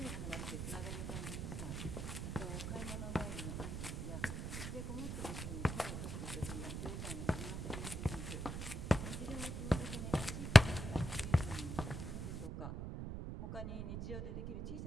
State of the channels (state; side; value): noise; right; rumble, 4 dB below the sound